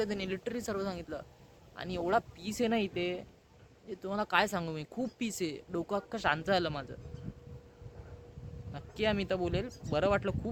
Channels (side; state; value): both; identical; correlation 1.00